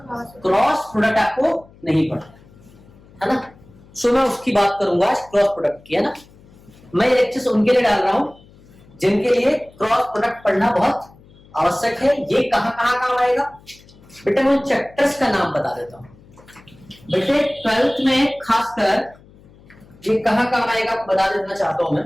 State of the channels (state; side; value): noise; left; hum, 25 dB below the sound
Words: क्रॉस प्रोडक्ट आपको नहीं पढ़ाया, है ना। सो मैं उसकी बात करूंगा आज, क्रॉस प्रोडक्ट की, है ना। मैं ये लेक्चर्स उनके लिए डाल रहा हूं जिनके लिए क्रॉस प्रोडक्ट पढ़ना बहुत आवश्यक है। ये कहां कहां काम आएगा बेटे, मैं चैप्टर्स का नाम बता देता हूं बेटे। 12th में खासकर ये कहां काम आएगा बता देना चाहता हूं मैं।